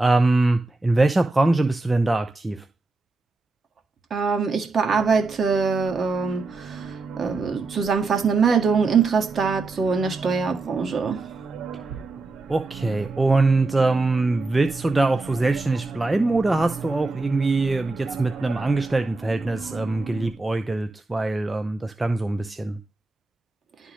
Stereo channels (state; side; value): quieter; left; 3.4 dB